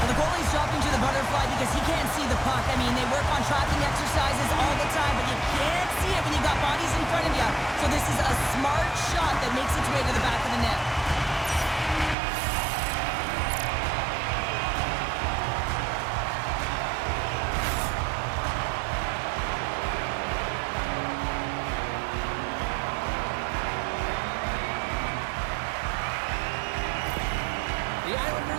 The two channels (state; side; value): drops out; left; at 12.2 s